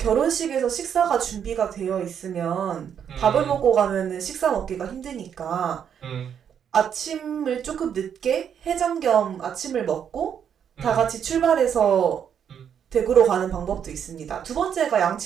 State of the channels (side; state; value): left; quieter; 8.3 dB